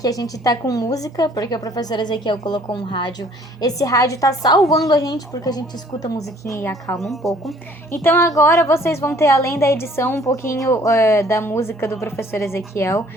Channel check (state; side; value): normal; both; correlation 0.57